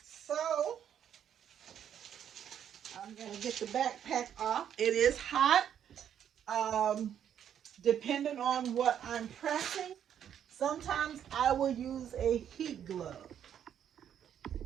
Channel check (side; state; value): left; quieter; 9.3 dB